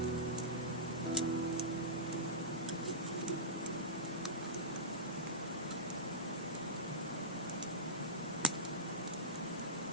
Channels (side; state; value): both; normal; correlation -0.17